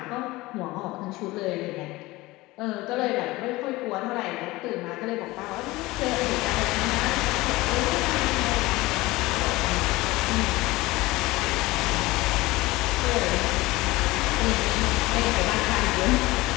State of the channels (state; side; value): quieter; right; 20.1 dB